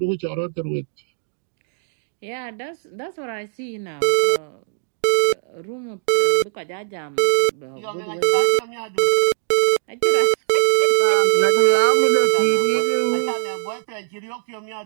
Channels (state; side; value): silent; left; digital silence